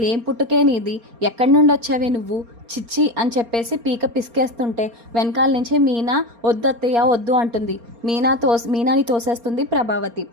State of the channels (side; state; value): left; late; 4.3 ms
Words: ఏం పుట్టుకే నీది, ఎక్కడి నుండి వచ్చావే నువ్వు, చిచ్చి అని చెప్పేసి పీక పిసికేస్తుంటే వెనకాల నుంచి మీనా వద్దత్తయ్య వద్దు అంటుంది. మీనాని తోసేస్తుంది ప్రభావతి.